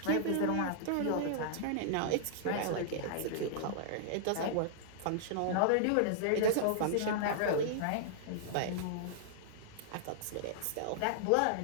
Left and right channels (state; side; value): different; both; correlation -0.01